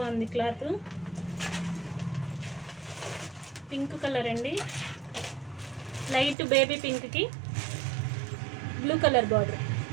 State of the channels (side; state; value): left; drops out; at 6.4 s